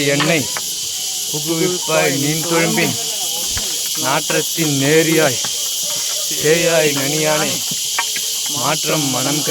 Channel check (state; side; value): identical; both; correlation 1.00